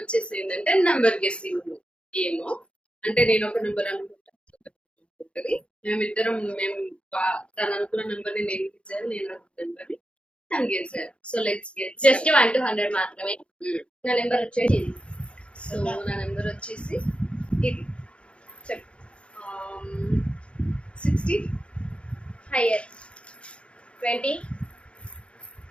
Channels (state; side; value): late; right; 0.059 ms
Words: ఏంటంటే నంబర్ గెస్సింగ్ గేమ్. అంటే నేను ఒక నెంబర్ అనుకుంటుంది, తను అనుకున్న నెంబర్ ని నేను గెలిచాను, నేను అనుకున్న నెంబర్ ని తను గెలిచారు. సో లెట్స్ గెట్ జస్ట్ 1 to 100 మాత్రమే. నా నెంబర్ వచ్చేసి ఇది. సో నా నెంబర్ వచ్చేసి ఇది. చెప్పు. 60 హైయర్ 20